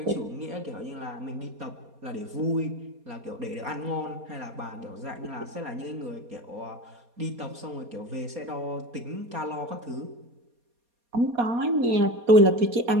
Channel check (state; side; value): late; left; 4.2 ms